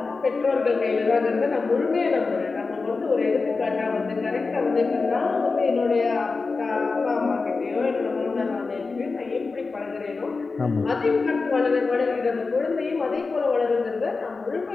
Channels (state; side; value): quieter; right; 4.2 dB